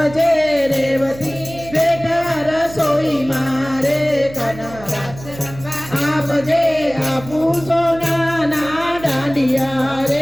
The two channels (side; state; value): right; noise; hum, 16 dB below the sound